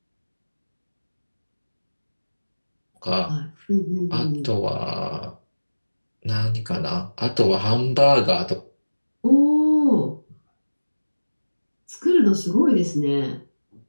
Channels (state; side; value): inverted; both; correlation -1.00